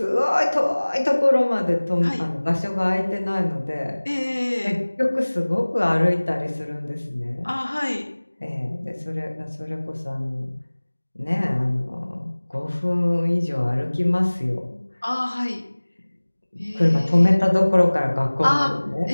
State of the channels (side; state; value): both; inverted; correlation -1.00